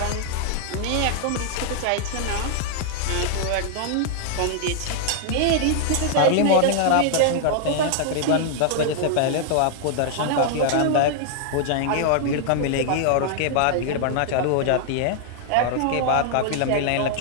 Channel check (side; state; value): both; different; correlation 0.00